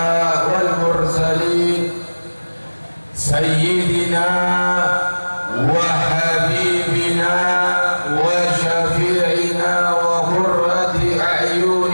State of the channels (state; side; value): inverted; both; correlation -1.00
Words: wal mursalin sayyidina wa habibina wa syafi'ina wa qurrati